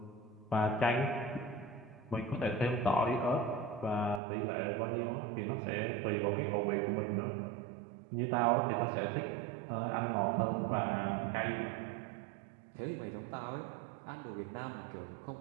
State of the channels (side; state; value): left; drops out; at 4.2 s